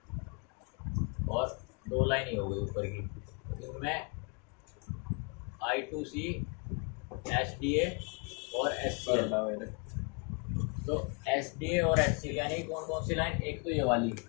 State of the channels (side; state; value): right; quieter; 35.1 dB